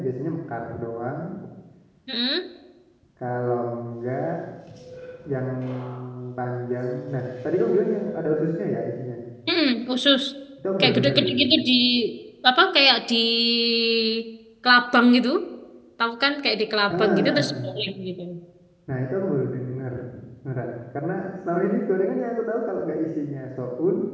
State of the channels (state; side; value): identical; both; correlation 1.00